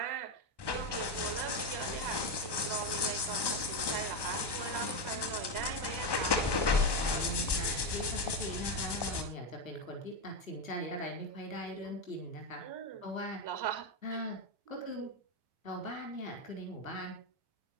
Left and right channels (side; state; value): right; late; 1.1 ms